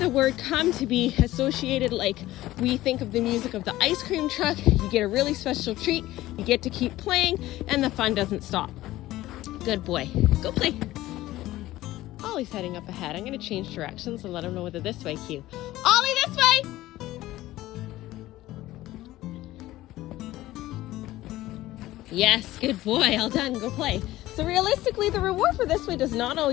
word come to be associated like we think of the music of the ice cream truck. You get a really special treat, you get to keep playing, and the fun doesn't stop. Good boy. Go play. Ollie's heading up ahead. I'm going to change directions and let him know whether this way cue. Ollie, this way! Yes, good boy. All done. Go play. So realistically, the reward for this way does not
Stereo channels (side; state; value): right; quieter; 16.2 dB